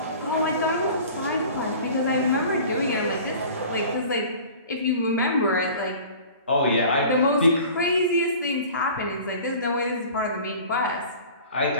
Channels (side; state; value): both; inverted; correlation -0.43